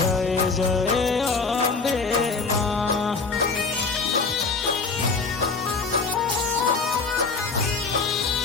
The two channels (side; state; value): right; quieter; 4.5 dB